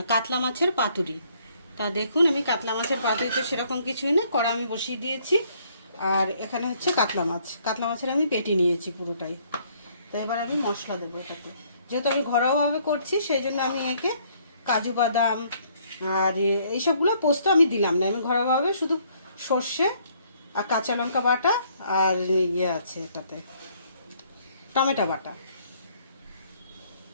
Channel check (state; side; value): inverted; both; correlation -0.65